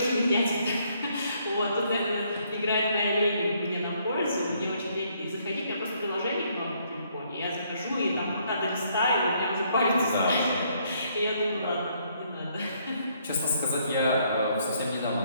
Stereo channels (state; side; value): inverted; both; correlation -0.69